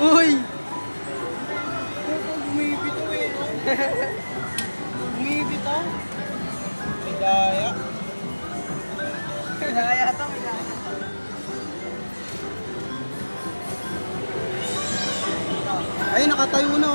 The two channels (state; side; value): inverted; both; correlation -1.00